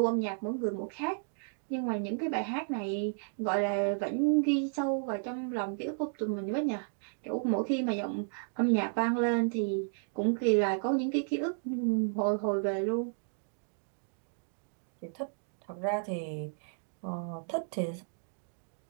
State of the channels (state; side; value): silent; left; digital silence